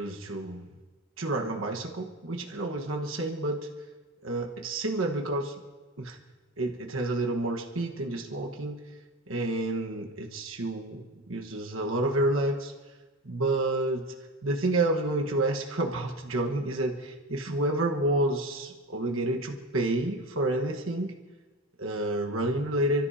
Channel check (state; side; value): normal; both; correlation 0.28